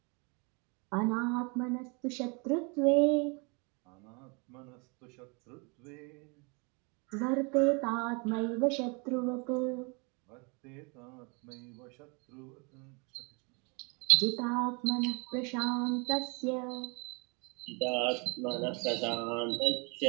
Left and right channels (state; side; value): quieter; left; 31.8 dB